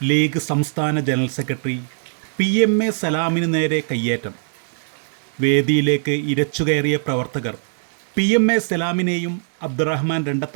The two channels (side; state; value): left; silent; digital silence